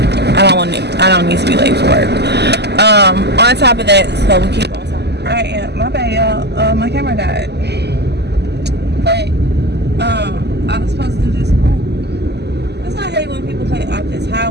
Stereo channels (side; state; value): left; late; 0.49 ms